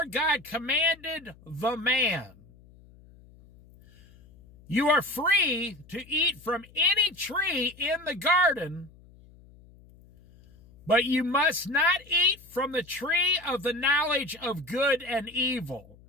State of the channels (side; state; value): left; noise; hum, 25 dB below the sound